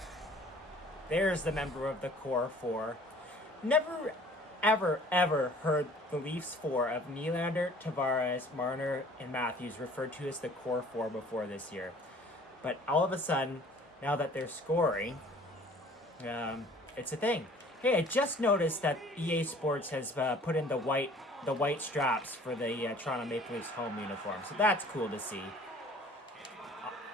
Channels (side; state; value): both; normal; correlation 0.51